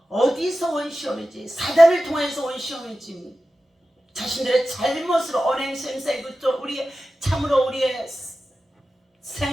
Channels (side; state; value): both; normal; correlation 0.94